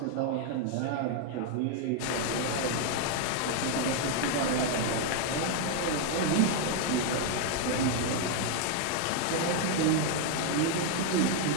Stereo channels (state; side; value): different; both; correlation 0.00